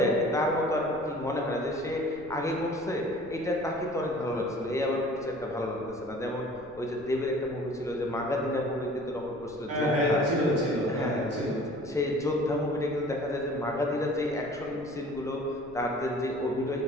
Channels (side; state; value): left; noise; rumble, 22 dB below the sound